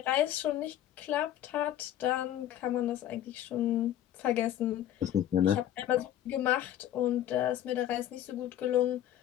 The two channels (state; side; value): quieter; right; 11.7 dB